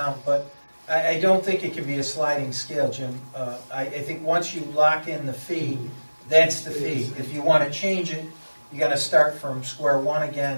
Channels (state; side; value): inverted; both; correlation -1.00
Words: But I don't think it can be a sliding scale, Jim. I think once you lock in the fee, that's the fee. If you want to change it, you got to start from square one